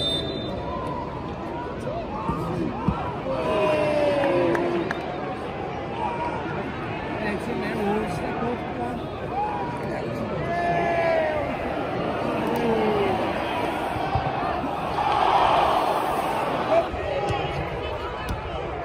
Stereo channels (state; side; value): identical; both; correlation 1.00